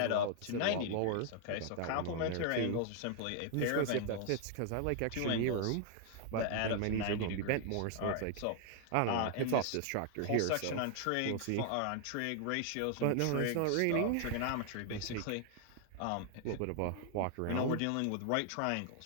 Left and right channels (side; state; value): both; different; correlation 0.00